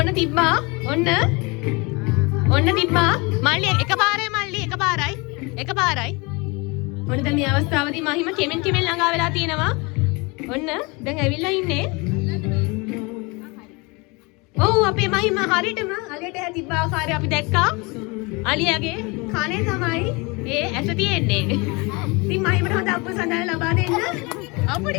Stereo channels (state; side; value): quieter; right; 27.5 dB